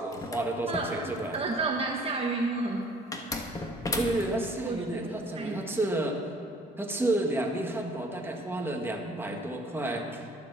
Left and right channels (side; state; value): both; normal; correlation 0.55